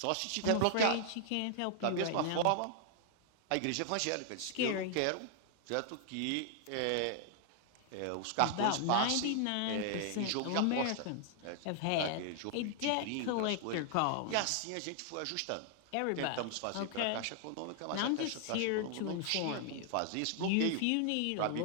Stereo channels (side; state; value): both; different; correlation 0.00